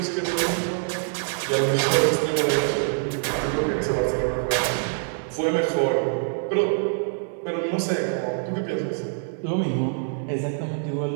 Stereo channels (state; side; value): silent; left; digital silence